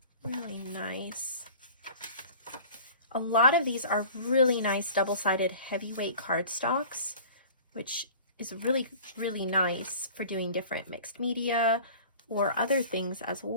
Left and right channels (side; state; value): both; inverted; correlation -0.43